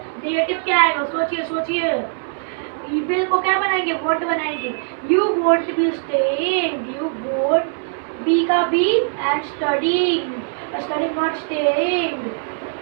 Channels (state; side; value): silent; left; 64 dB below the other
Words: नेगेटिव क्या आएगा, सोचिए सोचिए। विल को क्या बनाएंगे, वोंट बनाएंगे। You won't be staying, you won't, be का be and studying, studying not staying,